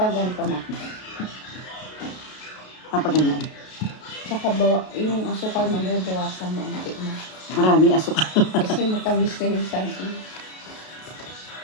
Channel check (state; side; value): late; right; 32 ms